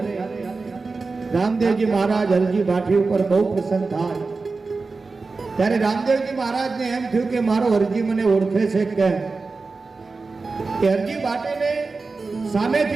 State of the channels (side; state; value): left; quieter; 4.0 dB